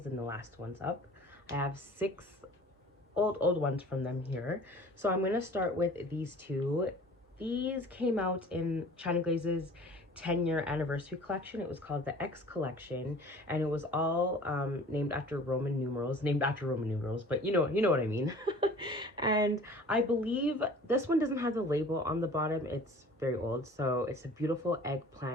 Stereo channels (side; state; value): both; normal; correlation 0.46